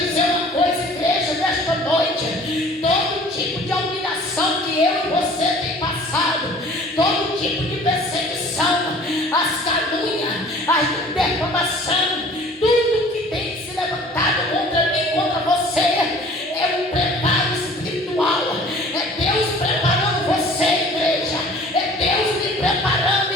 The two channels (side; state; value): both; normal; correlation 0.49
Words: uma coisa, igreja, nesta noite. Todo tipo de humilhação que eu e você tem passado, todo tipo de perseguição, as calúnias, a defamação, tudo que tem se levantado contra mim, contra você, é um preparo espiritual. É Deus preparando você, igreja. É Deus me preparando,